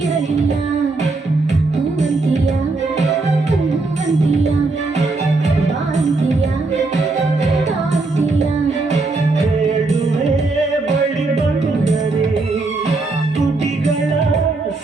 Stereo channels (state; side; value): quieter; left; 3.4 dB